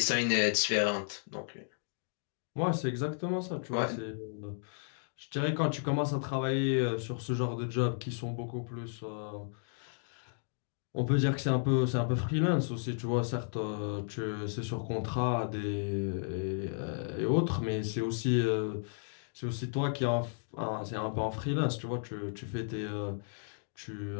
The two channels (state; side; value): silent; right; digital silence